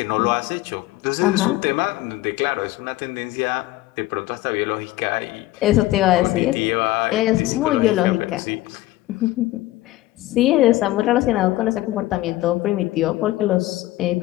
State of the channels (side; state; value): right; quieter; 17.0 dB